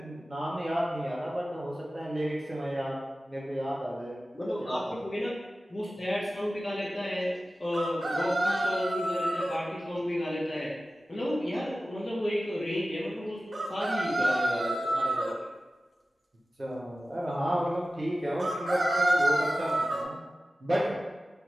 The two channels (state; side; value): normal; both; correlation 0.95